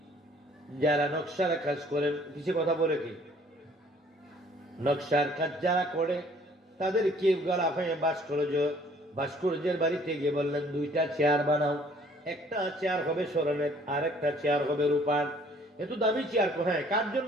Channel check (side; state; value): both; normal; correlation 0.58